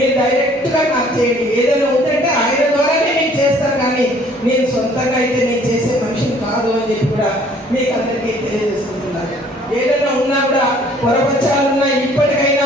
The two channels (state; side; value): normal; both; correlation 0.57